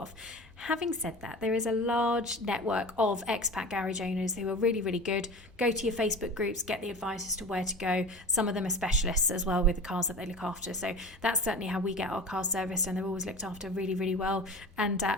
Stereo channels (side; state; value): both; normal; correlation 0.34